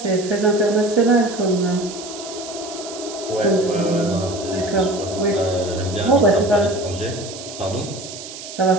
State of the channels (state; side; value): noise; right; hiss, 12 dB below the sound